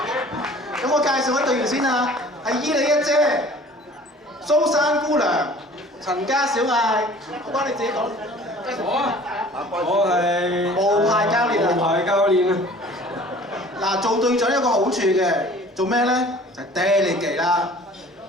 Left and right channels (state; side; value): normal; both; correlation 0.48